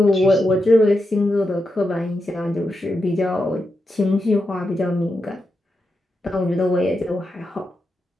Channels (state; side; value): normal; both; correlation 0.87